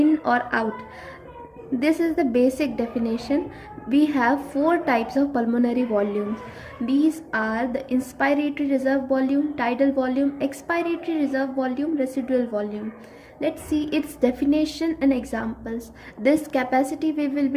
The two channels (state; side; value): identical; both; correlation 1.00